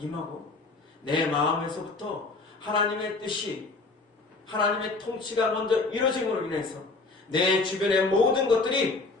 내 마음에서부터 하나님의 뜻이 하나님의 통치가 먼저 이루어짐으로 인해서 내 주변의 모든 것들이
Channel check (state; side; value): quieter; right; 3.6 dB